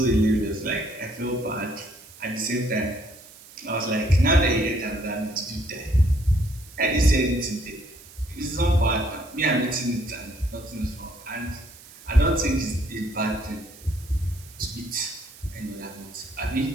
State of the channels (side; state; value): right; noise; hiss, 21 dB below the sound